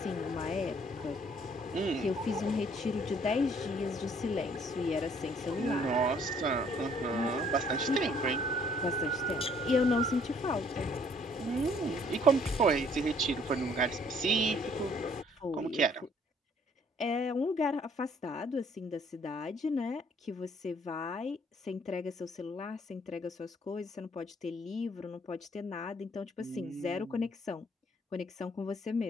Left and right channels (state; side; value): normal; both; correlation 0.62